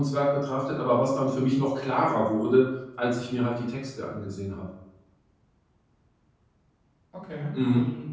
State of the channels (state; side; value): identical; both; correlation 1.00